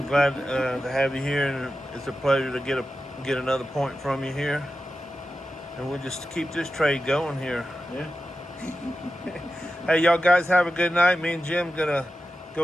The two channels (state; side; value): normal; both; correlation 0.91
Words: glad to have you here, and it's a pleasure to get another point from you here. And we'll just keep this trade going here. Yeah. Hey, y'all guys have a good night. Me and Jim gonna